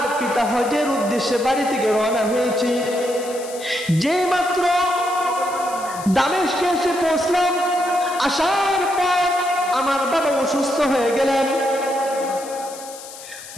পিতা হজের উদ্দেশ্যে বাড়ি থেকে রওনা হয়েছি। যে মাত্র দামেস্কে এসে পৌঁছলাম, আসার পর আমার বাবা অসুস্থ হয়ে গেলেন।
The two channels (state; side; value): noise; left; hiss, 15 dB below the sound